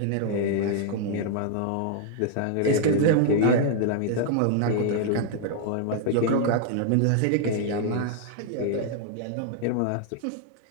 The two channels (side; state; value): both; different; correlation -0.01